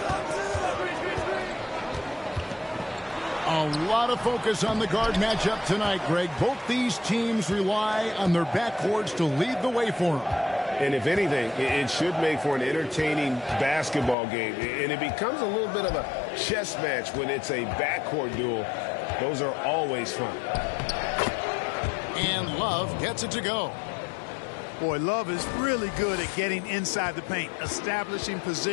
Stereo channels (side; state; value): right; drops out; at 14.2 s